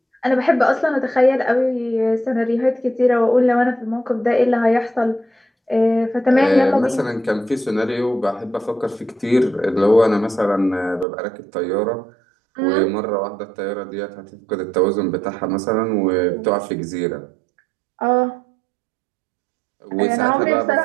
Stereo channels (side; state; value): left; drops out; at 11.1 s